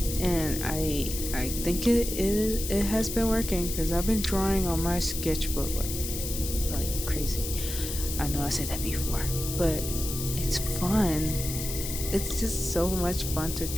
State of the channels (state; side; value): noise; left; hiss, 6 dB below the sound